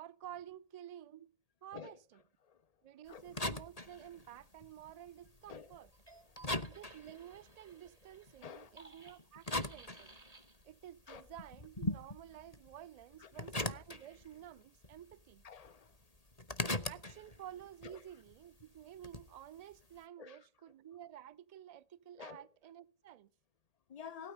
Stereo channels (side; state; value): right; late; 1.8 ms